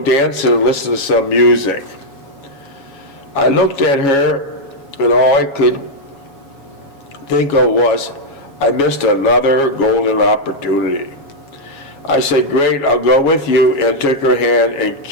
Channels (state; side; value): late; right; 7.3 ms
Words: dancing and listen to some music. I looked at her, and all I could think of was, I missed another golden opportunity. I said, great, I'll go with you, and took her hand and